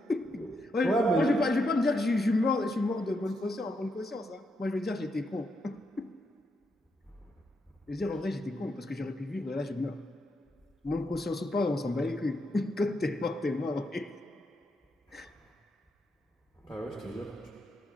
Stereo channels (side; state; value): both; normal; correlation 0.81